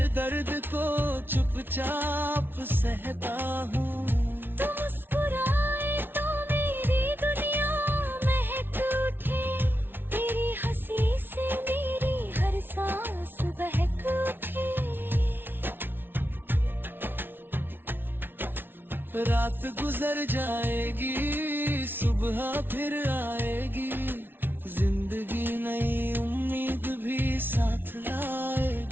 दर्द को चुपचाप सहता हूँ। तू मुस्कुराए तो मेरी दुनिया महक उठे, तेरी हंसी से मेरी हर सांस बहक उठे। रात गुजर जाएगी, सुबह फिर आएगी, जिंदगी नई उम्मीद भी साथ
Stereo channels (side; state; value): left; late; 0.10 ms